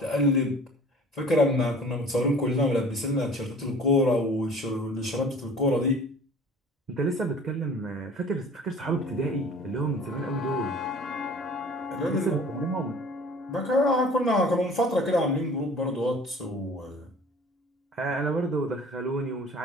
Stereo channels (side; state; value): both; normal; correlation 0.46